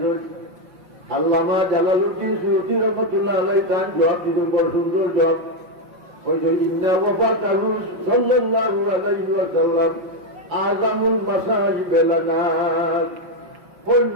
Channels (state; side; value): late; left; 5.6 ms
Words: আল্লামা জালালউদ্দিন সুয়ুতী রহমাতুল্লাহ আলাইহি তার জবাব দিলেন, বড় সুন্দর জবাব। ওই যে ইন্না ওয়াফাতাহু সাল্লাল্লাহু আলাইহি ওয়াসাল্লাম আযামুল মাসাইব লানা, ওই